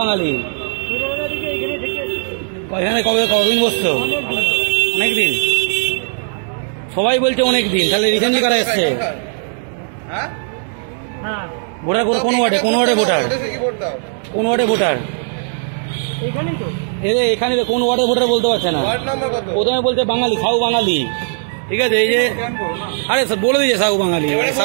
বাঙালি। এখানে কতদিন বসছো? অনেকদিন। সবাই বলছে অনেকদিন। তাহলে রিসেন্টলি কারা এসছে? ভোটার কোন ওয়ার্ডে? কোন ওয়ার্ডে ভোটার? কোন ওয়ার্ডে ভোটার? এখানে কোন ওয়ার্ডে ভোটার বলতে পারছে না। প্রথমে বলছে বাঙালি, সাউ বাঙালি। ঠিক আছে, এই যে আরে বলে দিয়েছে সাউ বাঙালি।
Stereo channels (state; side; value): silent; left; digital silence